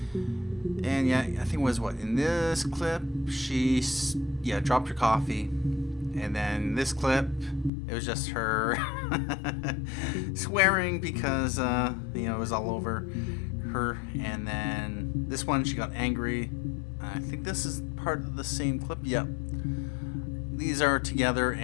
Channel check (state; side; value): drops out; right; at 7.7 s